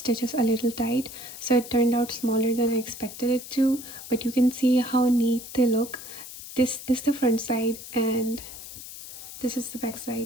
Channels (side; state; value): left; noise; hiss, 13 dB below the sound